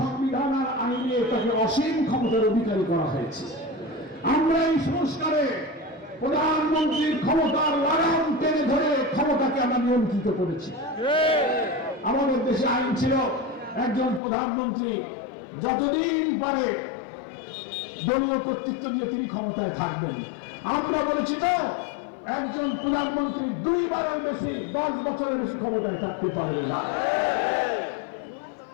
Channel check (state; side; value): drops out; right; at 14.2 s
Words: আর আইনে তাকে অসীম ক্ষমতার অধিকারী করা হয়েছে। আমরা এই সংস্কারে প্রধানমন্ত্রীর ক্ষমতার লাগাম টেনে ধরে ক্ষমতাকে আমরা নিয়ন্ত্রিত করেছি। আমাদের দেশে আইন ছিল একজন প্রধানমন্ত্রী যতদিন পারে দলীয় কর্তৃত্ব দিয়ে তিনি ক্ষমতায় থাকবেন। আমরা বলেছি না, একজন প্রধানমন্ত্রী 2 বারের বেশি 10 বছরের বেশি ক্ষমতায় থাকতে পারবে না।